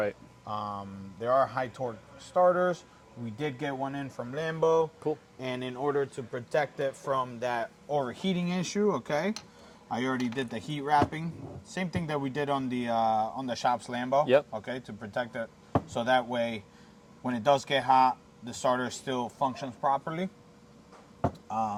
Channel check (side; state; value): both; identical; correlation 1.00